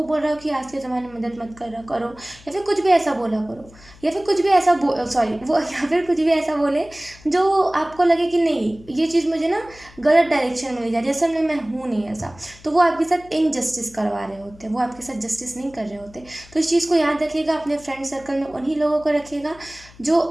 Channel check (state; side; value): noise; left; hum, 23 dB below the sound